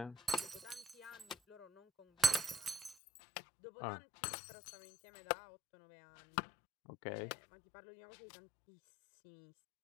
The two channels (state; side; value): drops out; right; at 3.0 s